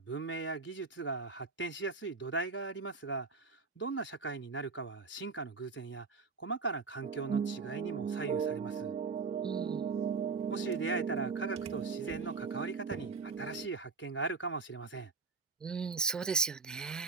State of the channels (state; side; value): quieter; left; 4.6 dB